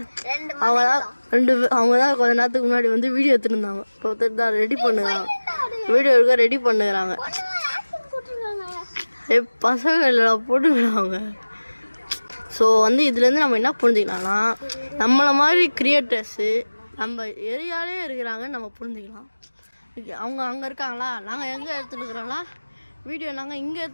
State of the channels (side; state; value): both; inverted; correlation -1.00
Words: அவங்க தான் கொஞ்ச நேரத்துக்கு முன்னாடி வந்து வீடியோ எடுத்துருந்தாங்க. இப்போ ஒருத்தர் தான் ரெடி பண்ணுறாங்க, வீடியோ எடுக்க ரெடி பண்ணுறாங்க. பசங்க இல்லை போட்டுக்கிறாங்க. ஸோ வந்து இதுலேருந்து நம்ம என்ன புரிஞ்சுக்கலாம்னா, நம்மளை மாதிரி கிரியேட்டர்ஸு நம்ம ஏரியாலே இருக்கிறாங்கன்னு நம்ம புரிஞ்சுக்கலாம். அவங்க அங்கே இருக்காங்களா, நாங்கள் எங்கே எடுத்துட்டுருக்குறோம்னா வீடியோ, நாங்கள் இங்கே